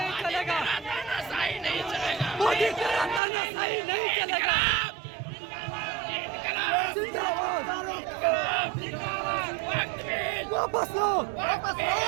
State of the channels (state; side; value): drops out; left; at 3.2 s